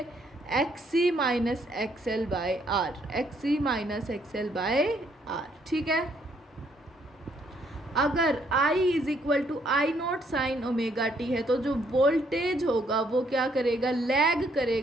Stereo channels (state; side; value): normal; both; correlation 0.69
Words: XC minus XL by R, XC minus XL by R, ठीक है। अगर I is equal to I naught sine omega T है तो जो वोल्टेज होगा वो क्या करेगा, लैग